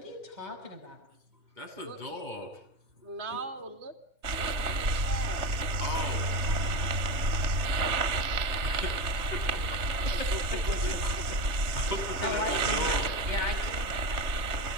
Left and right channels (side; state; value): left; late; 3.2 ms